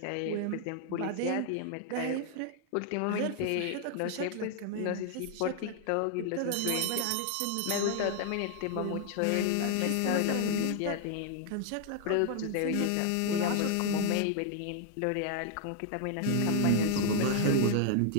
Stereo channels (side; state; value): both; different; correlation 0.00